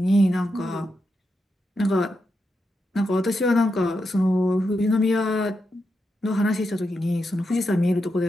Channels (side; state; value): both; normal; correlation 0.86